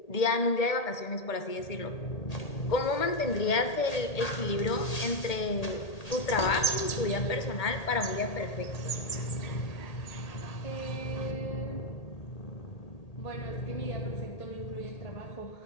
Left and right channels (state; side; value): late; right; 1.8 ms